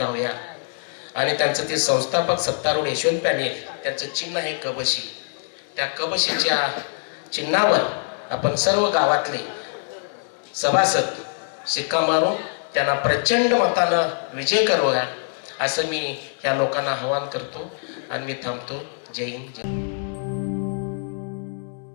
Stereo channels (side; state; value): right; silent; digital silence